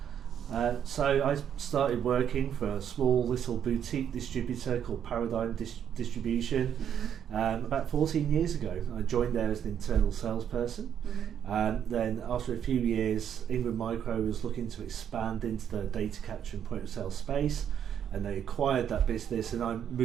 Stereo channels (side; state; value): left; quieter; 9.0 dB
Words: So I started working for a small little boutique distributor called Paradigm Distribution about 14 years ago. I joined there as an internal salesperson. Then after a few years, Ingram Micro was looking to expand into the data capture and point of sale space, and they acquired that business, and I